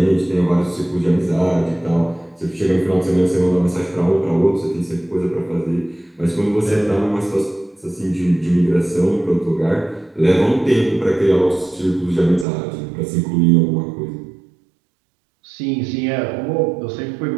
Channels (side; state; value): left; drops out; at 12.5 s